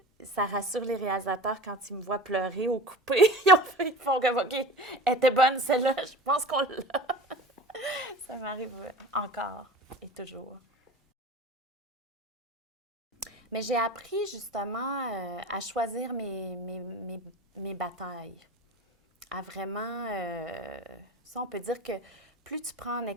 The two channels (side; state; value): both; normal; correlation 0.37